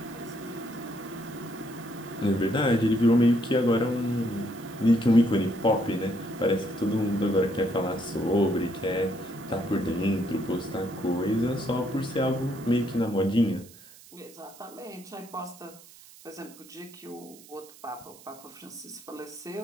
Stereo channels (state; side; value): noise; right; hiss, 21 dB below the sound